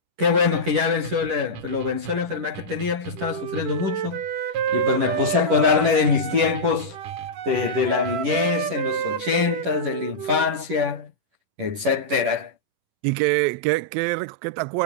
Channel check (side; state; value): left; late; 10 ms